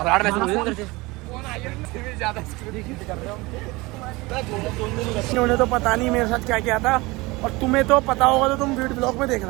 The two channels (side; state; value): left; quieter; 22.8 dB